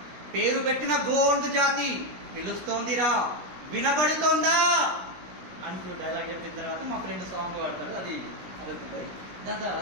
పేరు పెట్టిన గోండు జాతి పిలుస్తోందిరా వినబడుతోందా అని డైలాగ్ చెప్పిన తర్వాత మా ఫ్రెండ్ సాంగ్ పాడతాడు. అది అడుగుతుంది. దాని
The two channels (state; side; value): late; left; 17 ms